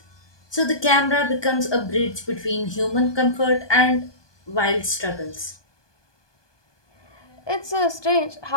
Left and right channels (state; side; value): late; right; 1.2 ms